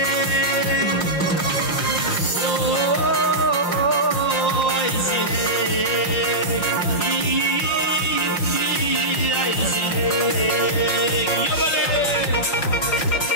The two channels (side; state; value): right; late; 5.6 ms